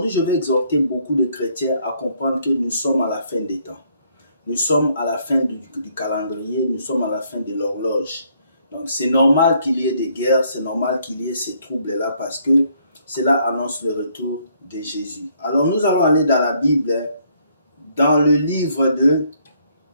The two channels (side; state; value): both; inverted; correlation -0.68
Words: je vais exhorter beaucoup de chrétiens à comprendre que nous sommes à la fin des temps. Nous sommes à la fin du calendrier, nous sommes à la fin de l'horloge. Donc, c'est normal qu'il y ait des guerres, c'est normal qu'il y ait ces troubles-là parce que cela annonce le retour de Jésus. Alors, nous allons aller dans la Bible, dans le livre de